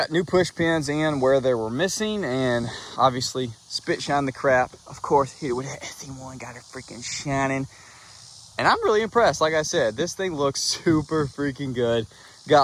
new push pins in where they were missing, and obviously spit shine the crap. Of course, hit it with that SE1, got it freaking shining, and I'm really impressed. Like I said, this thing looks super freaking good. Got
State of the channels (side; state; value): both; identical; correlation 1.00